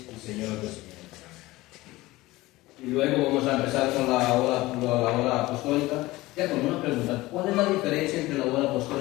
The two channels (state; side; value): quieter; right; 19.1 dB